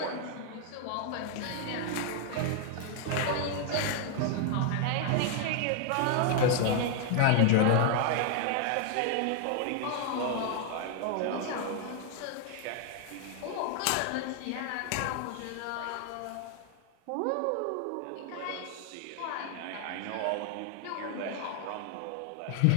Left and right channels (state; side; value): different; both; correlation 0.00